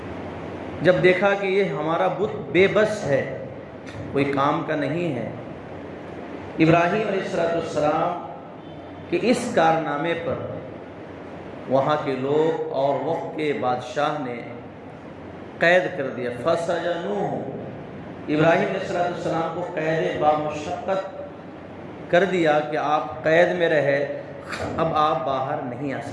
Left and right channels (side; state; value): both; identical; correlation 1.00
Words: جب دیکھا کہ یہ ہمارا بت بے بس ہے، کوئی کام کا نہیں ہے، ابراہیم علیہ السلام کہ اس کارنامے پر وہاں کے لوگ اور وقت کے بادشاہ نے قید کر دیا۔ فَسَجَنُوهُ، ابراہیم علیہ السلام کو قید بامشقت کر دیا کہ آپ قید میں رہے، اب آپ باہر نہیں آ